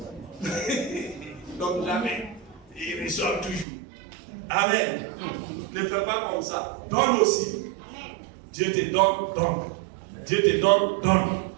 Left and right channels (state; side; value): drops out; left; at 3.7 s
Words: Donc jamais. Ils reçoivent toujours. Amen. Ne fais pas comme ça. Donne aussi. Dieu te donne, donne. Dieu te donne, donne.